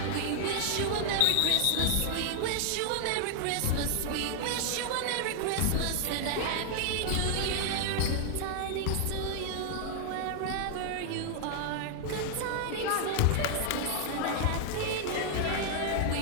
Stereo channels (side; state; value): both; different; correlation 0.00